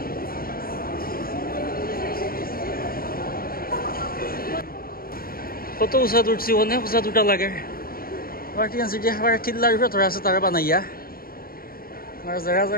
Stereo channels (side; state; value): right; late; 0.43 ms